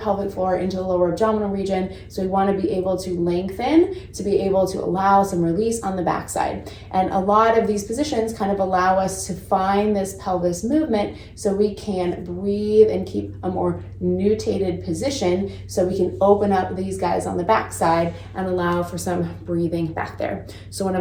floor into the lower abdominal region. So we want to be able to lengthen to be able to allow some release on the backside. And a lot of these positions kind of allow us to find this pelvis movement so we can breathe and keep a more nutated position so we can open up these guys on the backside and allow for some breathing back there. So one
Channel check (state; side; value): identical; both; correlation 1.00